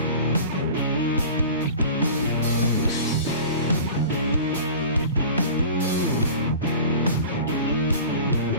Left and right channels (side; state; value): both; inverted; correlation -0.39